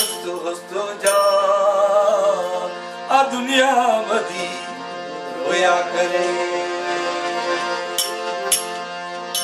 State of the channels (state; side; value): identical; both; correlation 1.00